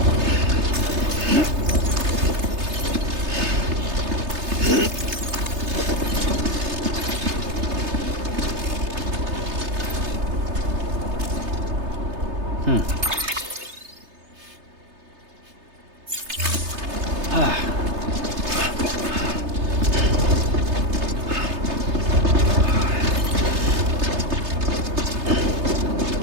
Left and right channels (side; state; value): left; late; 3.3 ms